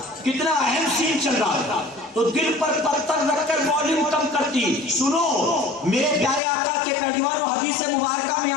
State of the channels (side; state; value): right; drops out; at 6.4 s